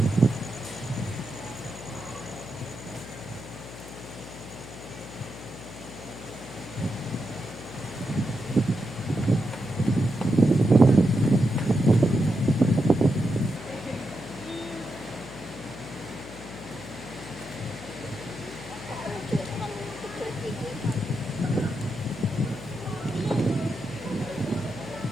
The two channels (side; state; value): left; noise; hum, 14 dB below the sound